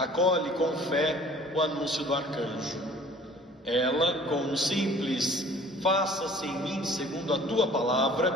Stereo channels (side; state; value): both; normal; correlation 0.50